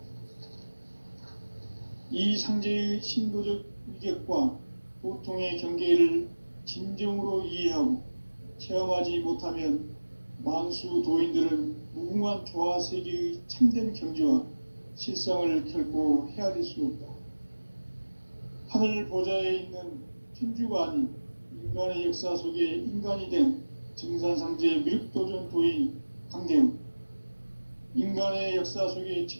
이 상제의 신도적 위격과 보통의 경계를 진정으로 이해하고 체험하지 못하면 만수 도인들은 무궁한 조화 세계의 참된 경지와 실상을 결코 헤아릴 수 없다. 하늘 보좌에 있는 천주가 아닌 인간의 역사 속에 인간이 된 증산상제 미륵도전 도인 강대훈, 인간의 역사 속에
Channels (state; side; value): inverted; both; correlation -1.00